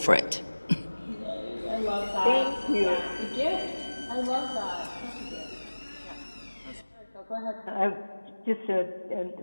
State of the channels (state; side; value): inverted; both; correlation -1.00